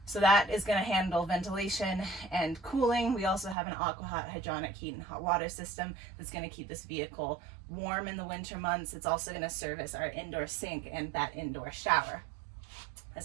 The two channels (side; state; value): left; drops out; at 3.6 s